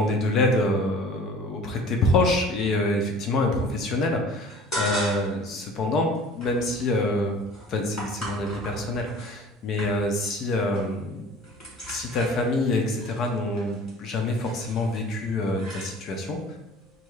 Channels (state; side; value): normal; both; correlation 0.45